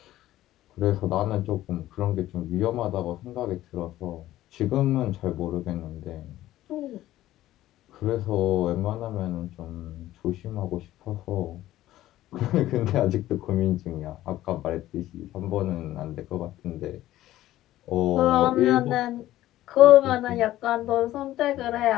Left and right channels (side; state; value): right; quieter; 14.6 dB